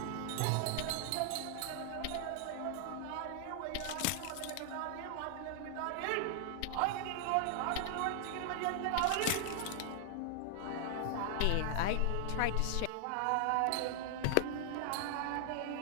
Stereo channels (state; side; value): different; both; correlation -0.01